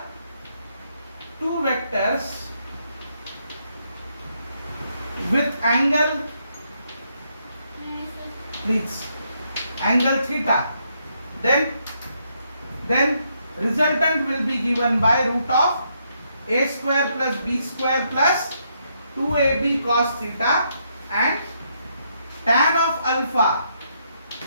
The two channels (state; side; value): inverted; both; correlation -0.76